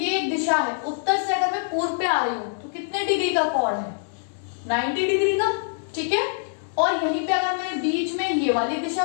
दिशा है, उत्तर से अगर मैं पूर्व पे आ रही हूं तो कितने डिग्री का कोण है, 90 डिग्री का। ठीक है, और यहीं पे अगर मैंने बीच में ये वाली दिशा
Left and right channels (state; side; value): silent; right; digital silence